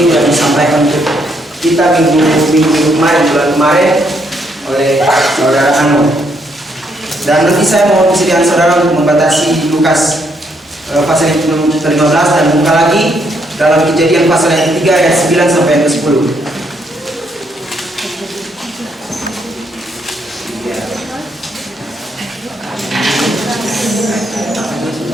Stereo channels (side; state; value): both; normal; correlation 0.74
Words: sudah disampaikan untuk kita minggu kemarin, bulan kemarin oleh saudara Anu. Dan nanti saya mau persediaan saudara untuk membatasi Lukas pasal yang ke-15 dan buka lagi dalam Kejadian pasal yang ke-3 ayat 9 sampai ayat ke-10.